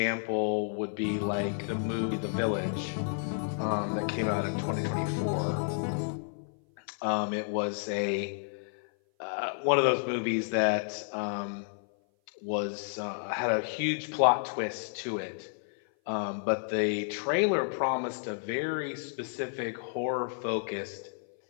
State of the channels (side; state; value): right; silent; 55 dB below the other